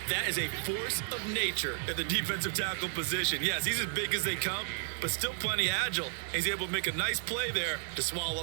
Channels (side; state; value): left; silent; digital silence